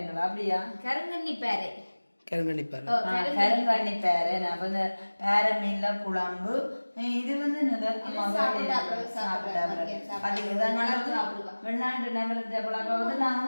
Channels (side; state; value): both; inverted; correlation -1.00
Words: அப்படியா கருங்கண்ணி பேரை கருங்கணிப்பார் கருங்கண்ணி பேரை நான் வந்து பேர மீன்ல குழம்பு. இது வந்து வெளிநாட்டு நபர்கிட்ட பழக்கம் வந்து